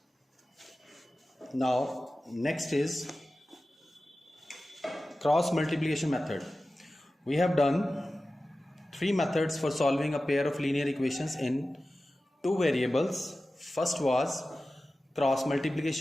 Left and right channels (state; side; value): normal; both; correlation 0.95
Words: Now, next is cross multiplication method. We have done three methods for solving a pair of linear equations in two variables. First was cross